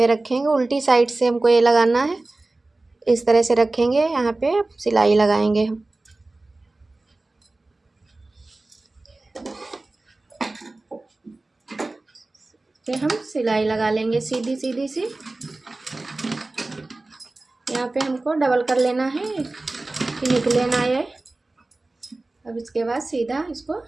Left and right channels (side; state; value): left; quieter; 3.0 dB